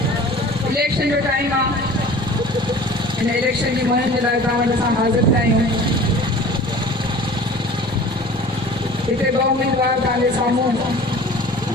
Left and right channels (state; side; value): normal; both; correlation 0.44